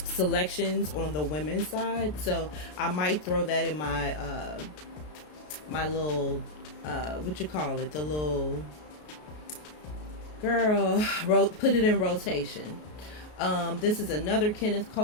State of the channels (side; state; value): right; late; 33 ms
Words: selections on the women's side. So I might throw that in my my little what you call it, the little girl, put it in rotation. This is another Kenneth